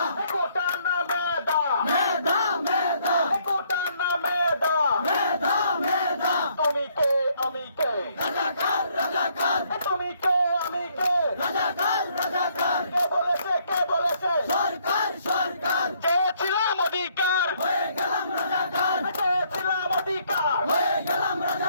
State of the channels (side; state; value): both; inverted; correlation -0.68